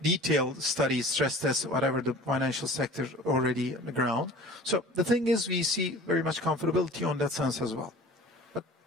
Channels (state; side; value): normal; both; correlation 0.43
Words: detailed studies, stress tests, whatever the financial sector already on the ground. So the thing is, we see very much comfortability on that sense as well. But